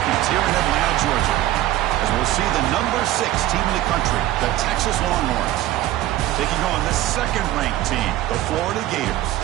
here in Atlanta, Georgia, as we'll see the number 6 team in the country, the Texas Longhorns, taking on the second-ranked team, the Florida Gators.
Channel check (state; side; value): quieter; left; 14.8 dB